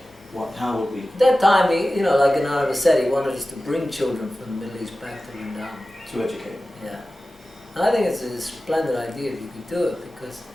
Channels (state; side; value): normal; both; correlation 0.95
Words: How would we? At that time, like Ananda said, he wanted us to bring children from the Middle East back to Vrindavan. To educate. Yeah. And I think it's a splendid idea if you could do it, because